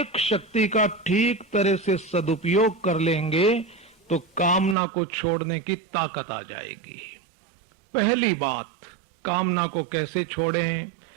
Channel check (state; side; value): drops out; left; at 4.8 s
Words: शक्ति का ठीक तरह से सदुपयोग कर लेंगे तो कामना को छोड़ने की ताकत आ जाएगी। पहली बात, कामना को कैसे छोड़ें?